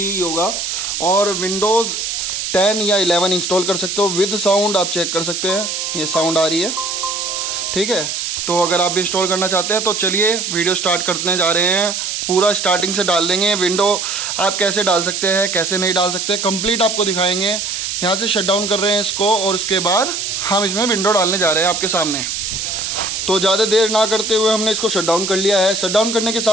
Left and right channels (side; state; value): right; noise; hiss, 3 dB below the sound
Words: योगा और विंडोज़ 10 या 11 इंस्टॉल कर सकते हो विद साउंड। आप चेक कर सकते हैं, ये साउंड आ रही है, ठीक है। तो अगर आप भी इंस्टॉल करना चाहते हैं तो चलिए वीडियो स्टार्ट करने जा रहे हैं। पूरा स्टार्टिंग से डाल देंगे। विंडो आप कैसे डाल सकते हैं, कैसे नहीं डाल सकते, कंप्लीट आपको दिखाएंगे। यहाँ से शट डाउन कर रहे हैं इसको और उसके बाद हम इसमें विंडो डालने जा रहे हैं आपके सामने। तो ज़्यादा देर ना करते हुए हमने इसको शट डाउन कर लिया है। शट डाउन करने के